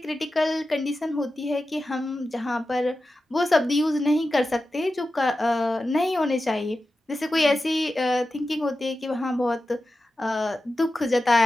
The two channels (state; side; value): normal; both; correlation 0.93